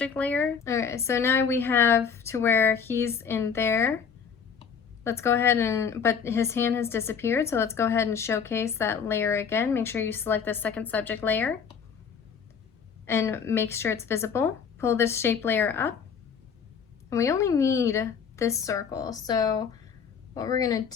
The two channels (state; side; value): quieter; right; 6.7 dB